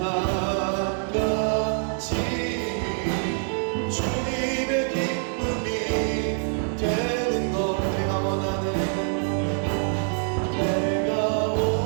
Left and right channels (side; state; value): left; silent; 60 dB below the other